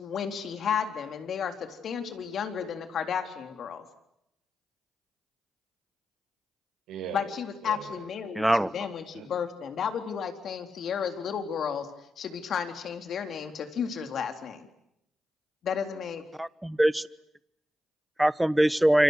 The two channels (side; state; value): both; normal; correlation 0.88